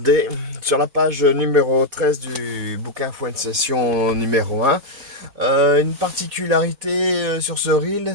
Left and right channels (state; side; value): late; left; 4.1 ms